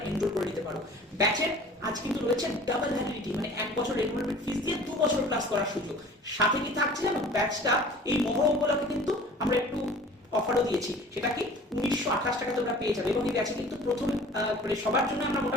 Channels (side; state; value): both; normal; correlation 0.46